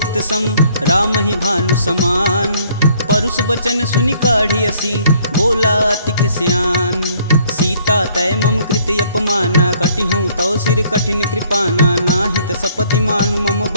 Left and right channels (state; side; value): inverted; both; correlation -0.61